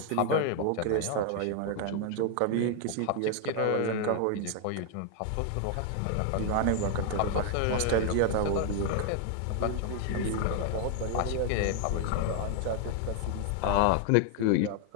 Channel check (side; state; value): both; different; correlation 0.00